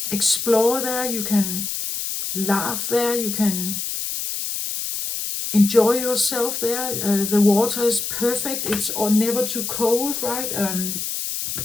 explore there, you can laugh there, you can enjoy yourself there. The water is perfect, it's never too cold, right?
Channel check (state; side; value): noise; left; hiss, 4 dB below the sound